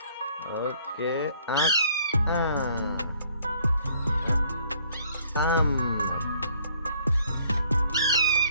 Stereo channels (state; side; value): inverted; both; correlation -0.62